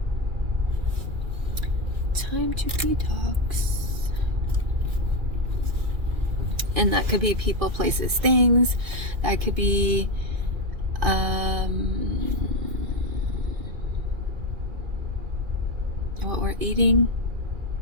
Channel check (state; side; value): late; left; 2.4 ms